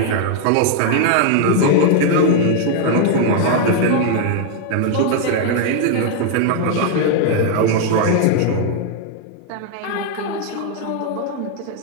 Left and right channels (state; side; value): different; both; correlation 0.00